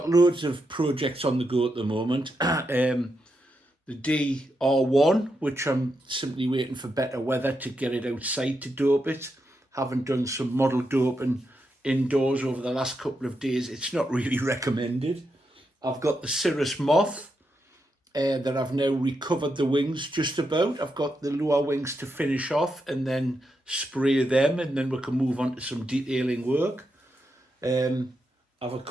loads of projects on the go at the moment. The DR1, which I'm simply waiting for better weather to get it outside to dope it. Haven't done some model doping indoors over the last couple of days. It's not really recommended. I've got the Cirrus Moth that I've now recovered the wings just about. I've got the lower wings to finish off and then spray them, and then we can move on to some detailing work. I've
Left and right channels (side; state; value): both; normal; correlation 0.84